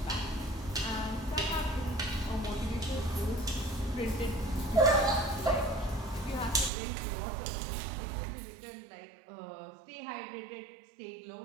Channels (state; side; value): drops out; left; at 6.7 s